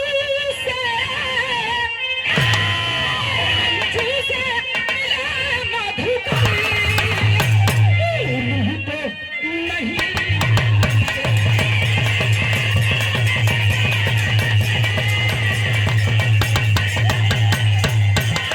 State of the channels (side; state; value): both; identical; correlation 1.00